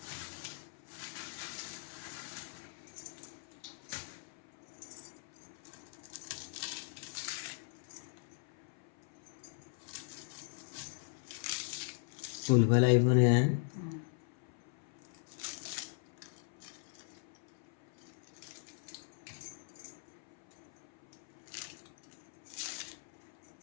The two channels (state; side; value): silent; right; 51 dB below the other